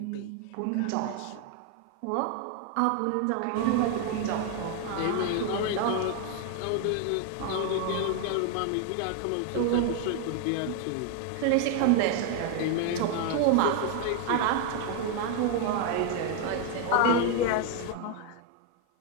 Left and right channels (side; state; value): both; different; correlation 0.01